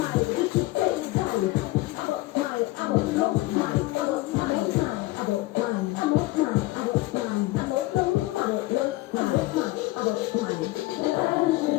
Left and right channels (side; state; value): right; quieter; 19.4 dB